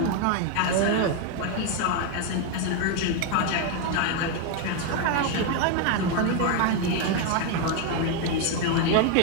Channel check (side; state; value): both; different; correlation 0.01